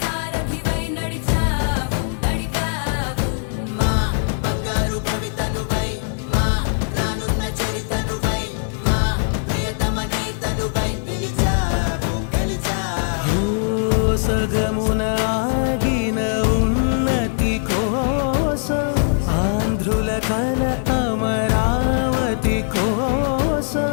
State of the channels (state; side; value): silent; right; 65 dB below the other